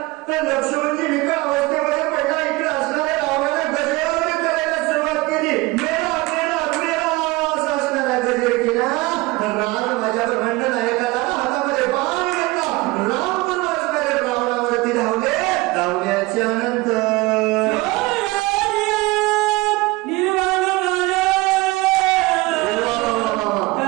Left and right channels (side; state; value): left; quieter; 21.8 dB